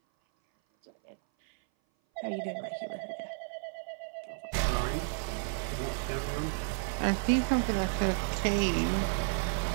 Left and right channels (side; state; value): left; silent; 56 dB below the other